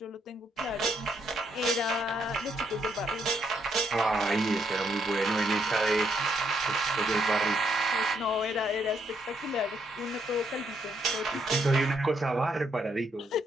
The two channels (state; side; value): normal; both; correlation 0.74